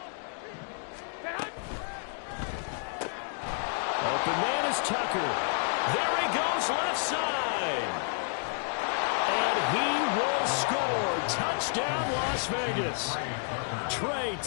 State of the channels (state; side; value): silent; right; 58 dB below the other